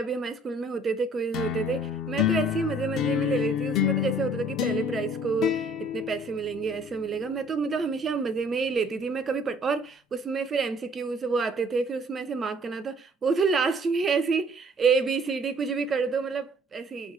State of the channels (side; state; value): both; normal; correlation 0.57